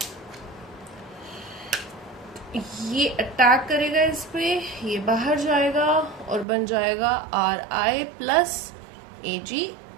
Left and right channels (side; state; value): left; drops out; at 6.5 s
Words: ये अटैक करेगा इस पे, ये बाहर जाएगा और बन जाएगा Ri प्लस